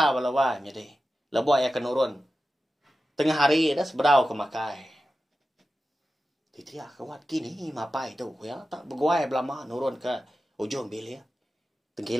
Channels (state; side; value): normal; both; correlation 0.93